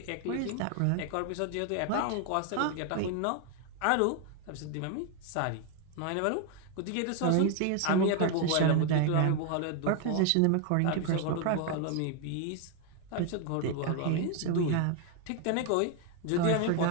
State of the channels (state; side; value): different; both; correlation 0.01